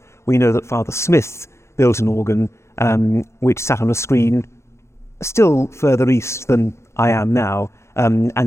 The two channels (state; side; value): late; right; 0.13 ms